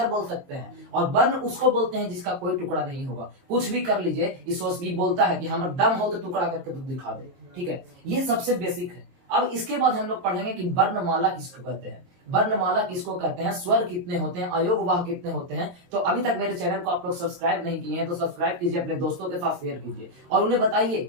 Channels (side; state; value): left; late; 22 ms